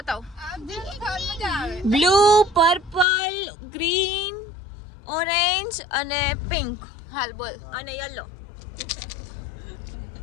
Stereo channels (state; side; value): drops out; right; at 3.1 s